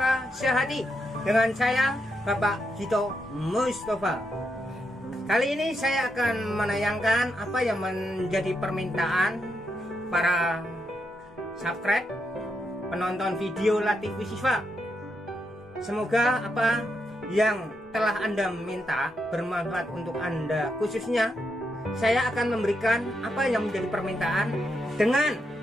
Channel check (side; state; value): both; normal; correlation 0.82